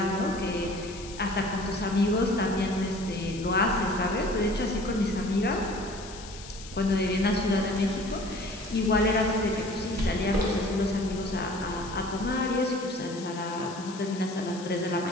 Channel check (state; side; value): noise; left; hiss, 16 dB below the sound